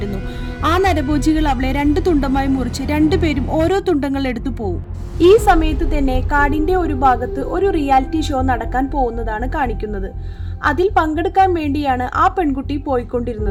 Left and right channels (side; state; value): both; identical; correlation 1.00